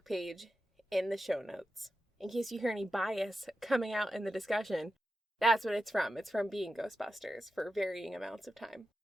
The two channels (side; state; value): both; normal; correlation 0.91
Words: page in the show notes. In case you hear any bias coming out in the discussion, that's what it's from. It's from being Ghostbusters for varying amounts of time.